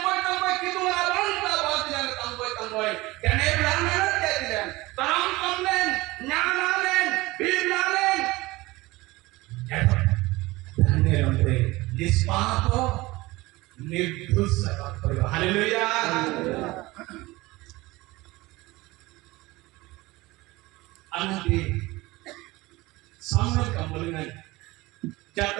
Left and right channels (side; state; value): left; quieter; 20.6 dB